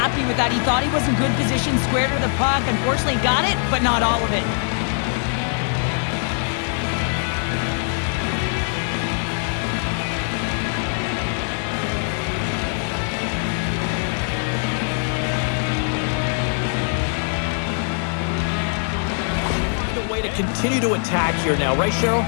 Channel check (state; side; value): silent; right; 57 dB below the other